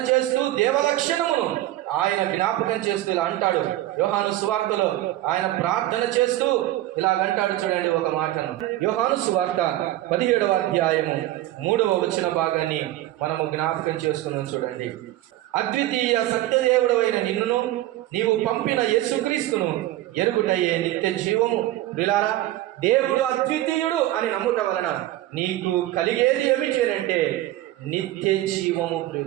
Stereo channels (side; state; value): left; quieter; 15.2 dB